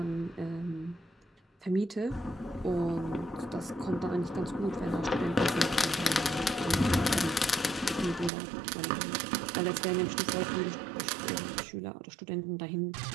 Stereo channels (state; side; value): drops out; left; at 8.3 s